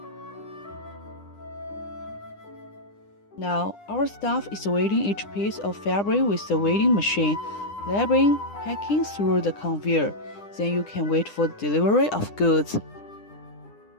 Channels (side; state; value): right; late; 9.9 ms